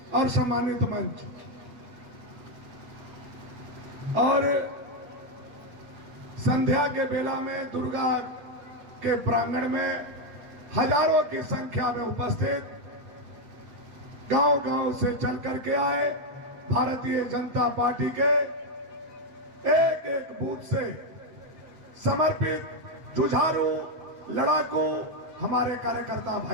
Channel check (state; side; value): late; left; 7.4 ms